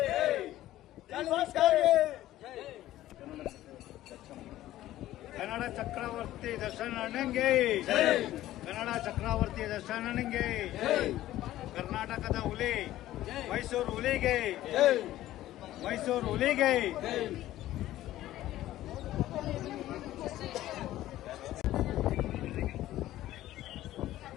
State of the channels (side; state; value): right; quieter; 14.5 dB